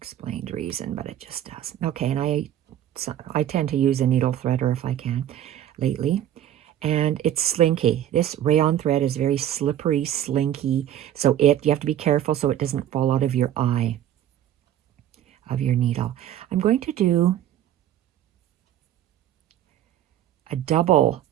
reason, but it just does. Okay, and I tend to use a needle threader if I can lately. And it's slinky. This rayon thread is very slippery, slinky, so you have to be careful so it doesn't fall out of your eye of your needle. I'm going to do a double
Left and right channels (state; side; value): quieter; left; 11.4 dB